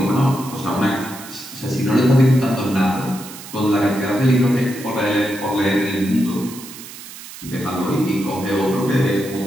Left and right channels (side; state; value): right; noise; hiss, 14 dB below the sound